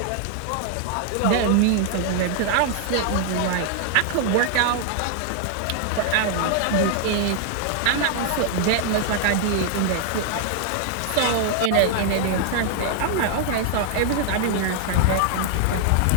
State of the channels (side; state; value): both; different; correlation 0.00